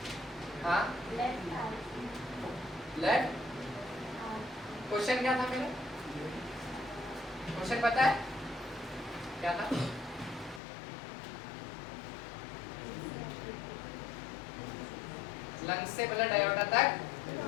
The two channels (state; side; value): drops out; right; at 10.6 s